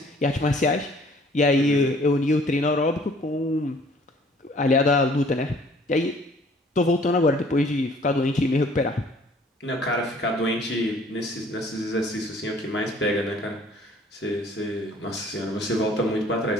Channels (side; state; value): both; normal; correlation 0.56